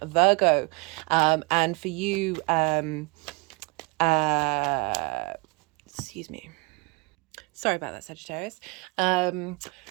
Virgo. And for you, excuse me. Sorry about that, Sagittarius.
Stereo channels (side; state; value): left; quieter; 28.3 dB